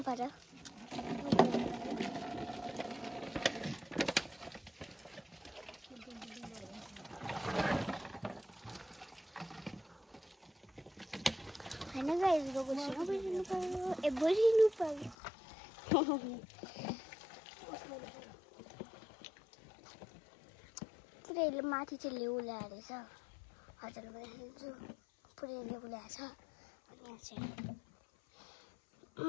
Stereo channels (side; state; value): right; drops out; at 15.2 s